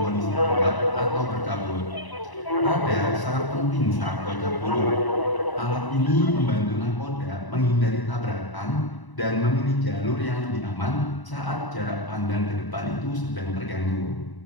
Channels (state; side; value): late; right; 1.0 ms